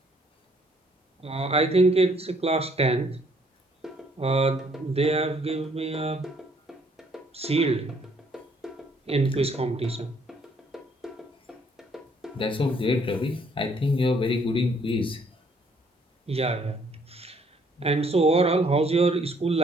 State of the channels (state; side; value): normal; both; correlation 0.65